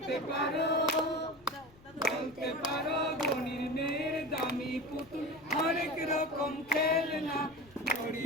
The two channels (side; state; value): left; noise; rumble, 26 dB below the sound